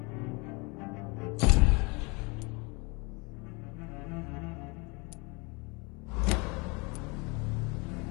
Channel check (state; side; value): quieter; right; 28.9 dB